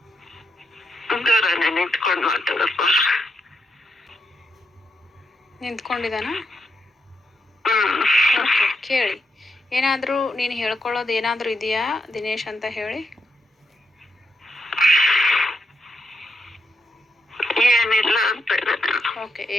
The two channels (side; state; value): both; normal; correlation 0.81